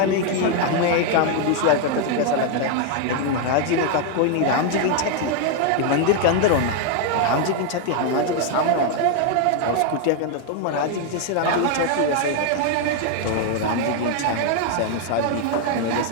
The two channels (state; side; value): different; both; correlation 0.00